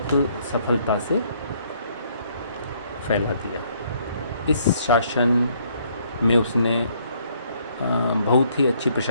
सफलता से फैला दिया। इस शासन में उसने बहुत ही अच्छी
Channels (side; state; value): both; inverted; correlation -0.67